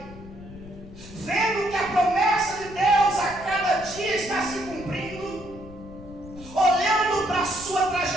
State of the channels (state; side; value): noise; left; rumble, 16 dB below the sound